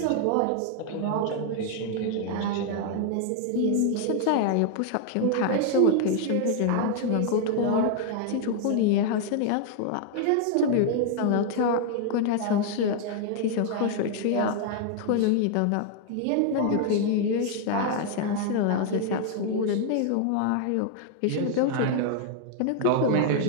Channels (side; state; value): both; different; correlation 0.00